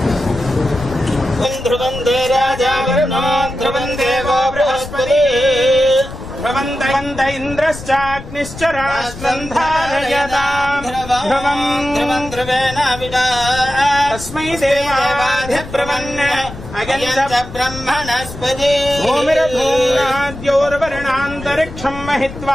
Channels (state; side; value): noise; left; rumble, 13 dB below the sound